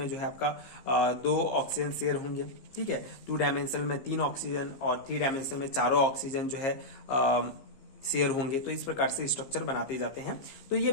जो है आपका 2 ऑक्सीजन शेयर होंगे, ठीक है। 2 डायमेंशनल में 3 ऑक्सीजन और 3 डायमेंशनल में 4 ऑक्सीजन जो है शेयर होंगे। तो इस प्रकार से स्ट्रक्चर बनाते जाते हैं। तो ये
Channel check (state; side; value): late; right; 15 ms